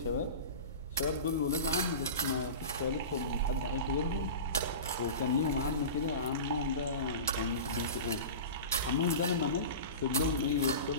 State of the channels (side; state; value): both; inverted; correlation -0.30